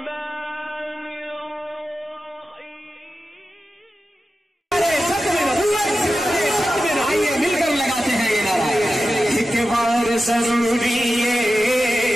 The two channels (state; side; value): normal; both; correlation 0.93